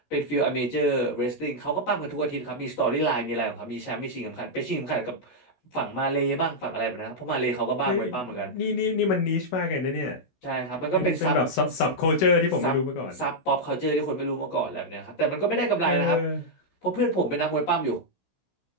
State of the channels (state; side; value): late; right; 16 ms